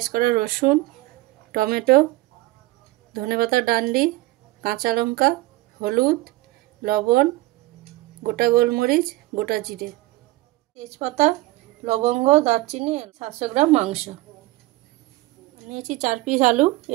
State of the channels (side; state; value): left; quieter; 19.1 dB